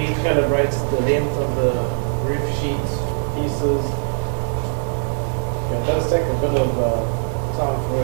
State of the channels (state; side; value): silent; left; digital silence